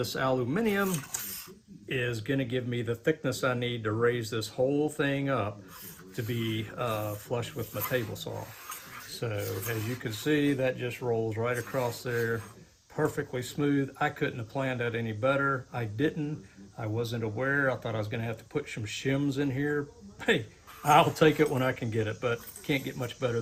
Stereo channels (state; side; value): identical; both; correlation 1.00